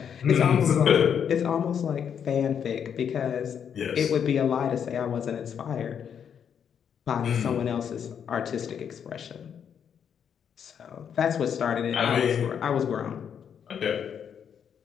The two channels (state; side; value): quieter; right; 8.0 dB